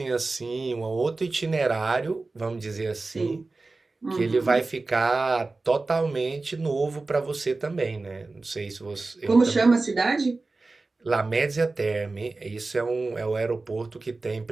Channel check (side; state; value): left; quieter; 3.5 dB